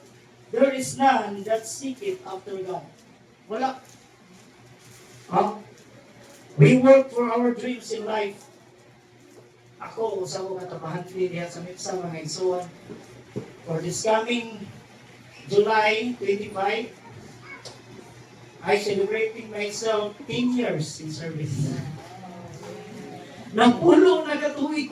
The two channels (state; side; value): identical; both; correlation 1.00